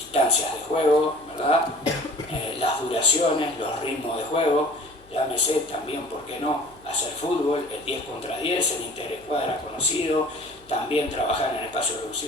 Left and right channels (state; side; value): noise; left; hum, 27 dB below the sound